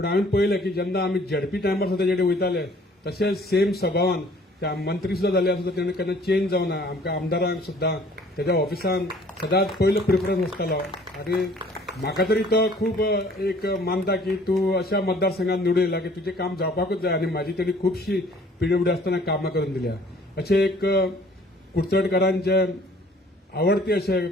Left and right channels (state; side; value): normal; both; correlation 0.55